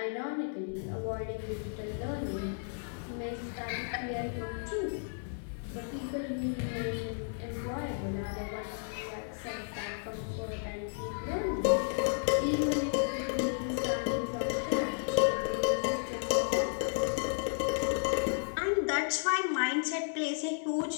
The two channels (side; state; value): right; silent; digital silence